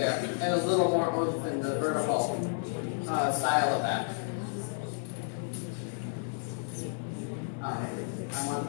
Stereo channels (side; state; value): right; silent; digital silence